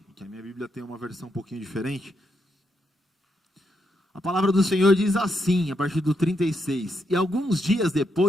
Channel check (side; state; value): both; normal; correlation 0.80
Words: que a minha Bíblia tem uma versão um pouquinho diferente. A palavra do Senhor diz assim, a partir do 36. E alguns dias